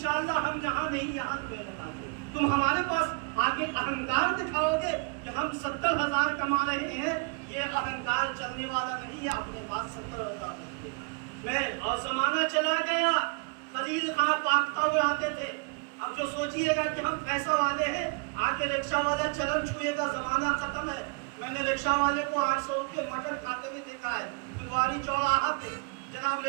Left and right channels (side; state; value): left; quieter; 32.9 dB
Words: ہم یہاں نہیں یہاں تمہیں بتاتے۔ تم ہمارے پاس آگے اہنکار دکھاؤ گے کہ ہم 70,000 کما رہے ہیں، یہ اہنکار چلنے والا نہیں ہے۔ اپنے پاس 70,000 میں اور زمانہ چلا گیا، خلیل خان پاکتا ہوئے آتے تھے۔ اب جو سوچئے گا کہ ہم پیسہ والے ہیں، آگے رکشہ والا چلن چھوئے گا، زمانہ ختم ہے۔ میں نے رکشہ والے کو 800 روپے مٹن کھاتے ہوئے دیکھا ہے، پھلواری چوراہا پہ جناب